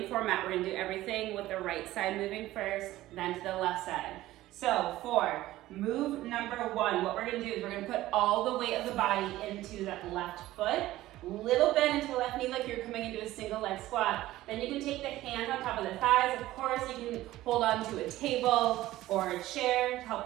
format. We're gonna do everything with the right side moving first, then to the left side. So for move number 1, what we're gonna do is we're gonna put all the weight of the body into that left foot, little bend into the left knee like you're coming into a single leg squat. Then you can take the hands on top of the thighs. Of course, you can hold on to a table or a chair to help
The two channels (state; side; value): quieter; left; 15.9 dB